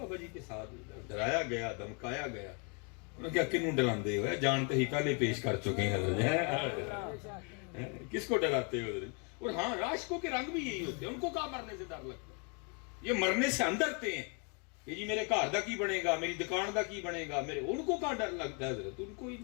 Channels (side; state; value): right; quieter; 36.0 dB